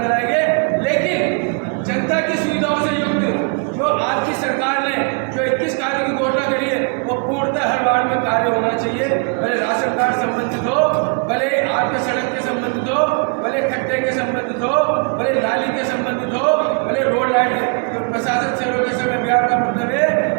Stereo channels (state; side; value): quieter; left; 38.8 dB